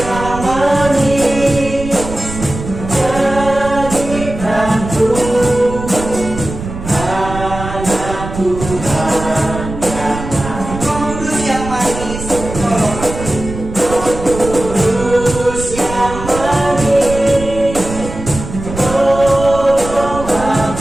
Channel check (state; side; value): noise; right; rumble, 9 dB below the sound